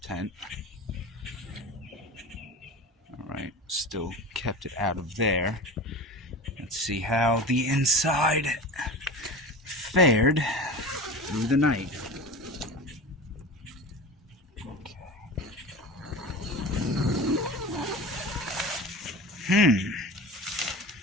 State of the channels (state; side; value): normal; both; correlation 0.32